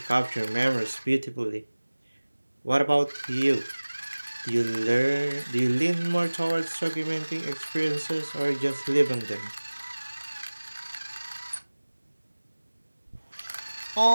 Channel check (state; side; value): inverted; both; correlation -1.00